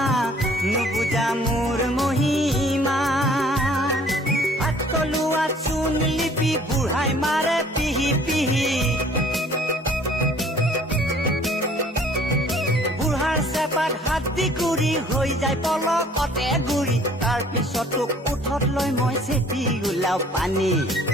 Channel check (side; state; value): both; normal; correlation 0.56